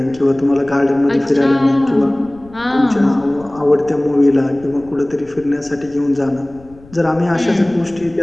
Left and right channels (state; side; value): noise; left; rumble, 23 dB below the sound